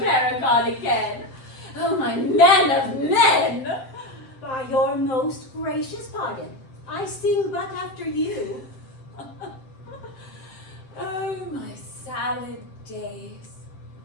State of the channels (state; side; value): late; right; 7.6 ms